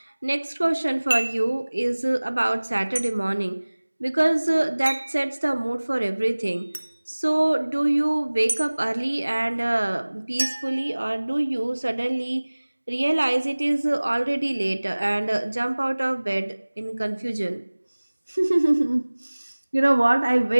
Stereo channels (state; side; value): inverted; both; correlation -1.00